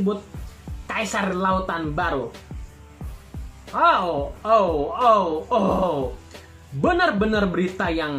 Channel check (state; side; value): identical; both; correlation 1.00